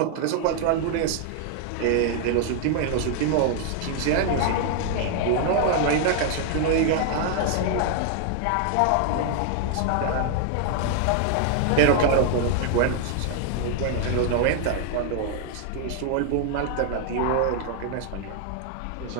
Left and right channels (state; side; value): different; both; correlation 0.00